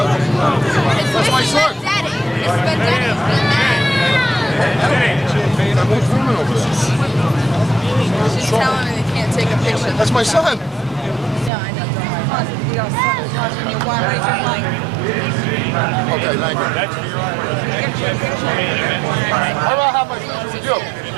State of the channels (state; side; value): drops out; left; at 11.5 s